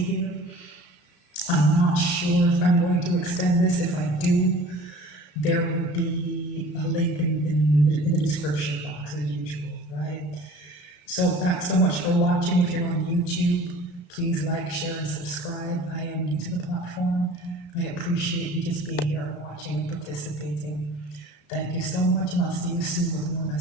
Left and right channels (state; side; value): late; right; 33 ms